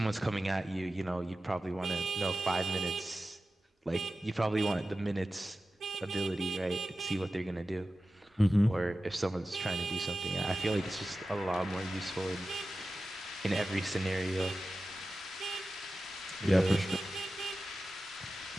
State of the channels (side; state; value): both; normal; correlation 0.94